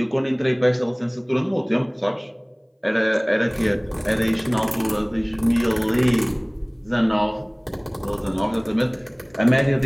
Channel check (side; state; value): both; identical; correlation 1.00